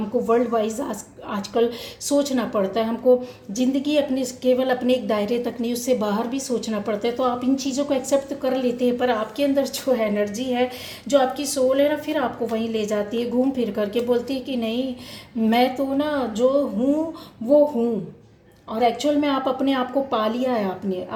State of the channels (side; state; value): both; identical; correlation 1.00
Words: वर्ल्ड वाइज आजकल सोचना पड़ता है। हमको ज़िंदगी अपने केवल अपने एक दायरे तक नहीं, उससे बाहर भी सोचना पड़ता है। तो आप इन चीज़ों को एक्सेप्ट कर लेते हैं, पर आपके अंदर जो एनर्जी है, जो आपकी सोल है ना, फिर आपको वहीं ले जाती है, घूम फिर करके बोलती है कि नहीं, मैं तो ना जो हूँ वो हूँ। और एक्चुअल में आप अपने आप को पा लिया है आपने,